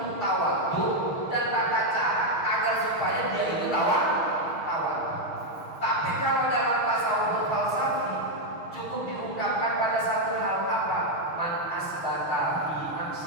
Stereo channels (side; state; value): right; late; 6.4 ms